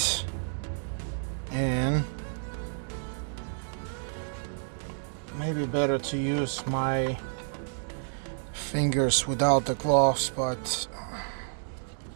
and maybe better to use my fingers without the gloves, but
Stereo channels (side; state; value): left; silent; digital silence